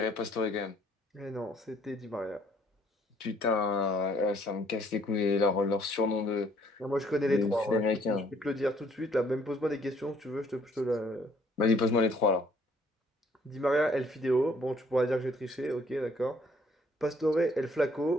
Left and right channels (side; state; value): both; normal; correlation 0.63